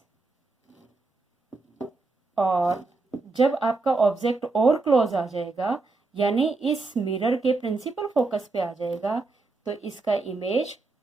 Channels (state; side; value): quieter; left; 3.5 dB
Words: और जब आपका ऑब्जेक्ट और क्लोज आ जाएगा, यानी इस मिरर के प्रिंसिपल फोकस पे आ जाएगा, तो इसका इमेज